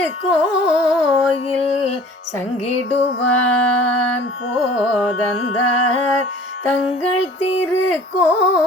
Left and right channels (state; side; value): normal; both; correlation 0.48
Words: சங்கிடுவான் போதந்தார். தங்கள்